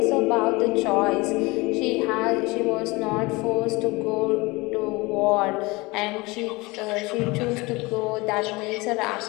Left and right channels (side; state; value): right; quieter; 23.7 dB